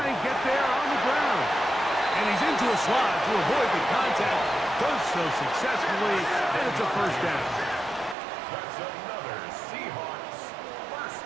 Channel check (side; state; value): left; drops out; at 8.2 s